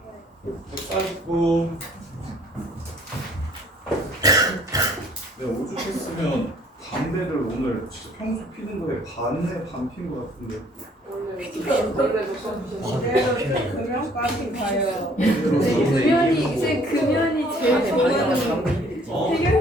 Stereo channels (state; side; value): normal; both; correlation 0.59